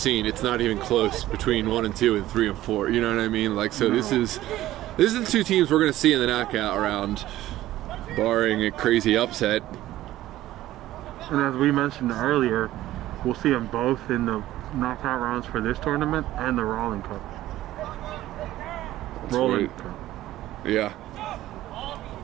it's not even close between 1 and 2 and 3 and 4. You know what I mean? Like, so no. This is the 2 teams we're going to see in the knockout round, barring a crazy upset. And as we mentioned earlier, we'll see them both in the knockout rounds for this tournament and the Rowland Cup. That's Rowland right. Cup. Yeah.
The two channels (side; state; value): left; quieter; 14.9 dB